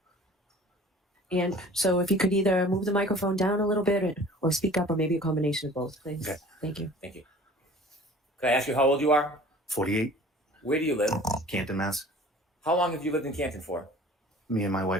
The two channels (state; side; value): normal; both; correlation 0.46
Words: And so if you could either move the microphone down a little bit or speak up, or maybe a combination of both, please. Okay. Thank you. Thank you. Could I ask you how old you are? 48, Where do you live? Canton, Mass. How long have you lived in Canton for? Me and my